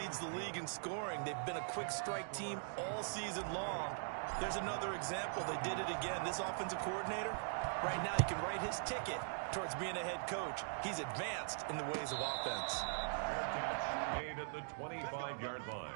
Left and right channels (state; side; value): silent; left; digital silence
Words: the league in scoring. They've been a quick strike team all season long. There's another example. They did it again. This offensive coordinator, right now, he can write his ticket towards being a head coach. He's advanced in the ways of offense. Fair catch made at the 25-yard